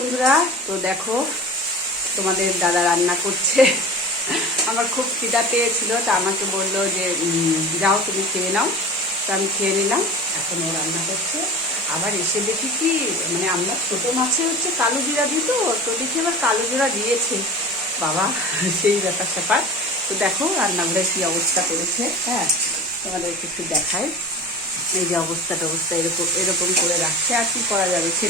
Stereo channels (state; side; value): normal; both; correlation 0.36